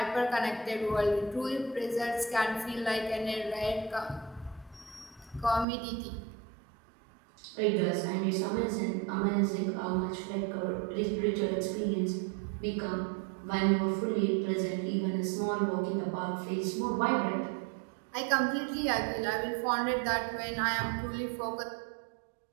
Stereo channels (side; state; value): left; drops out; at 5.7 s